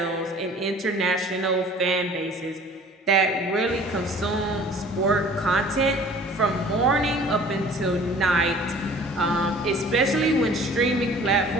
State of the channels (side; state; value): both; normal; correlation 0.48